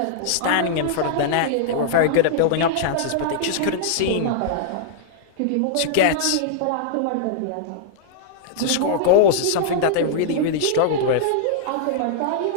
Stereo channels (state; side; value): different; both; correlation -0.01